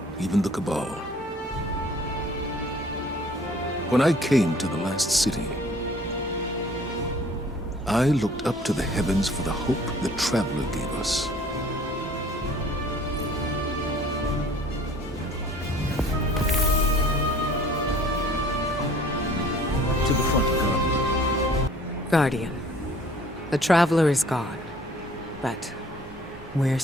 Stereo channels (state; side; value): normal; both; correlation 0.53